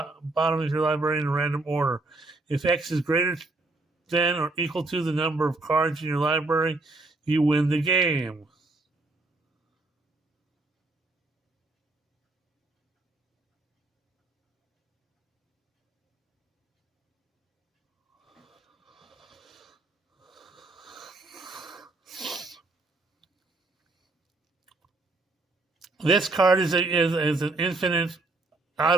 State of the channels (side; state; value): left; quieter; 3.2 dB